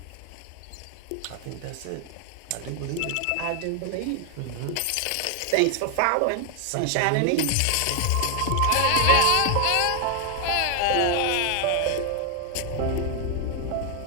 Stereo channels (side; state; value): both; different; correlation 0.00